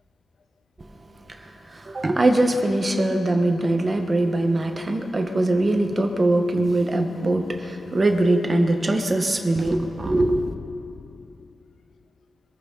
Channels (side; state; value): both; normal; correlation 0.95